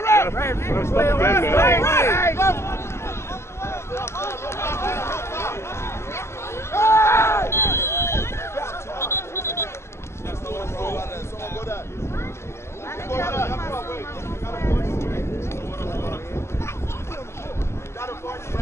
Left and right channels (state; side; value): late; right; 0.13 ms